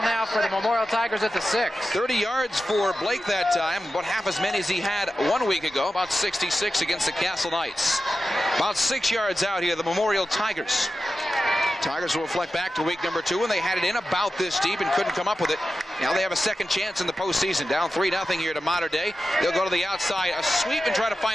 now for the Memorial Tigers at the 6. 30 yards for Blake that time, about half as many as he had 1 week ago, about 66 against the Castle Knights. About 6 yards out here, the Memorial Tigers. Tigers will reflect back to week number 2, and they had it in about this deep and couldn't come up with it. Now they have a second chance in the postseason. Down 3-0 here to Mater Dei. They'll go to the outside, a sweep, and try to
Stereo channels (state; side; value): normal; both; correlation 0.92